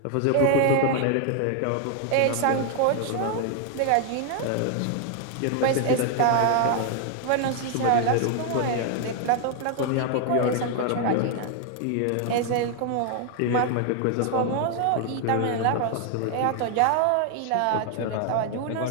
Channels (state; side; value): different; both; correlation 0.00